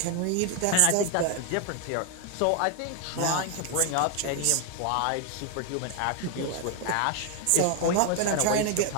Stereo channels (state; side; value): different; both; correlation 0.01